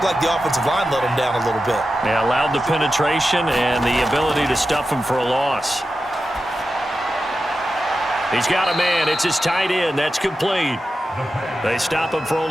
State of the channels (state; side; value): normal; both; correlation 0.91